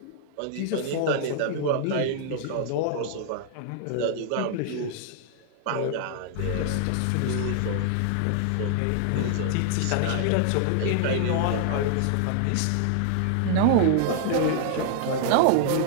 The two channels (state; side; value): different; both; correlation 0.00